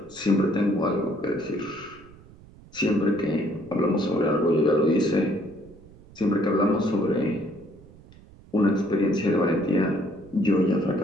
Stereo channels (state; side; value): noise; right; rumble, 23 dB below the sound